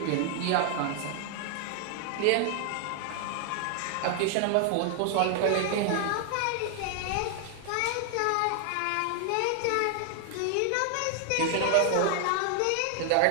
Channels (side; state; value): both; different; correlation 0.00